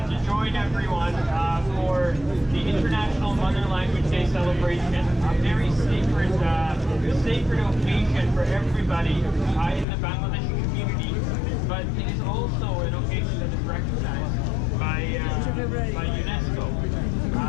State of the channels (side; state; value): right; drops out; at 9.9 s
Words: to join everyone for the International Mother Language Day celebration. A very sacred occasion for everybody in the Bangladeshi community, but it is also an occasion that is recognized by UNESCO.